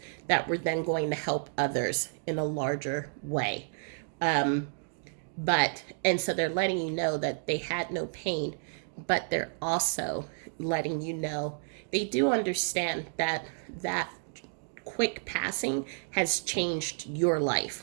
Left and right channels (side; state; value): left; silent; digital silence